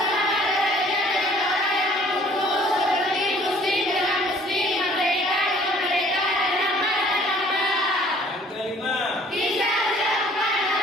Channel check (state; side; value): normal; both; correlation 0.55